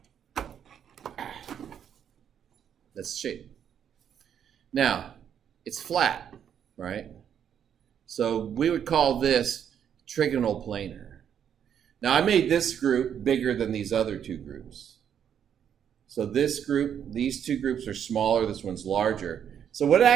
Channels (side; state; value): left; quieter; 8.7 dB